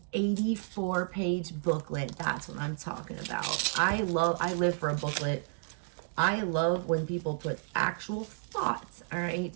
84-page booklet. That's what I'm talking about. I live for a booklet. I love when people put actual thoughts, all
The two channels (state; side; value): silent; left; digital silence